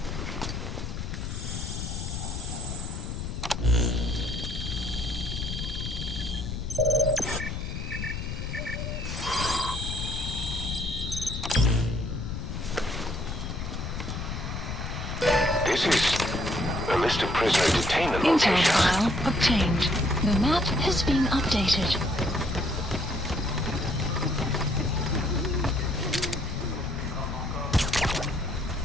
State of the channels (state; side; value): noise; left; rumble, 5 dB below the sound